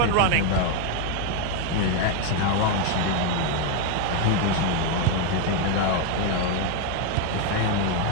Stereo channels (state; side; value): different; both; correlation 0.01